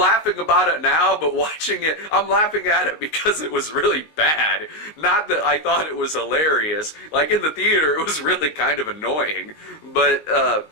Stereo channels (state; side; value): late; right; 19 ms